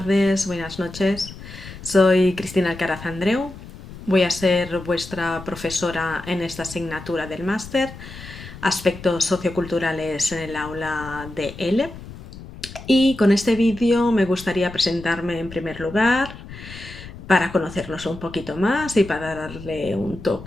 buenas noches. Soy Cristina Alcaraz Andreu. Voy a ser vuestra profesora en esta asignatura del máster, Aspectos socioculturales en el aula de L. Y con este vídeo me gustaría presentarme en primer lugar para conocernos un poquito más y para darle un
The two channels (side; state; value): left; noise; rumble, 14 dB below the sound